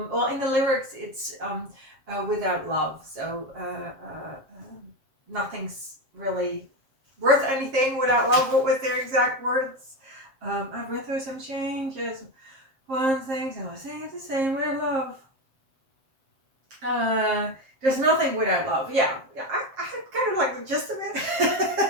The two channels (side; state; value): left; late; 7.5 ms